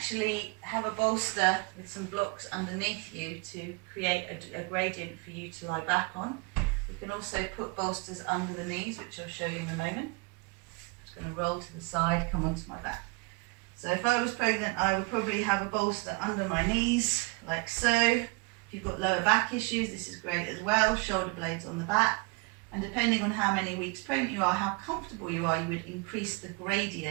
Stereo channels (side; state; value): left; quieter; 28.4 dB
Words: have a bolster with some blocks underneath you to create a gradient for you to lie back on. You can also put bolsters under the knees, which I'll show you in a moment. I'm just going to roll to the side, come onto my back. So if I was pregnant, I would probably have a bolster under my knees, like so. If you've got lower back issues, this is great as well. Shoulder blades on the back. And depending on how many weeks pregnant you are, how comfortable you are, you would increase the